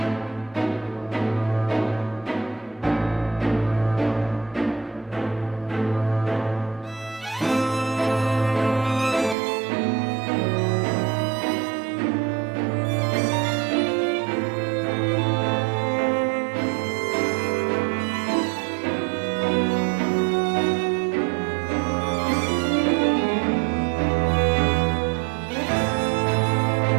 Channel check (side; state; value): left; drops out; at 9.3 s